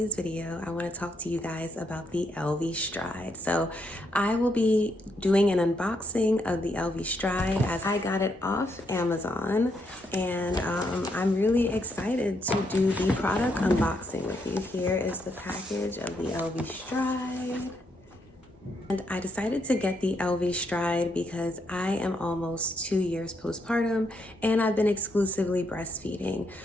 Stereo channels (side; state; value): both; normal; correlation 0.77